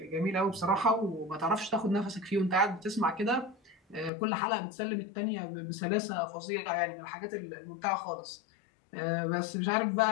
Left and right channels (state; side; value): drops out; right; at 4.1 s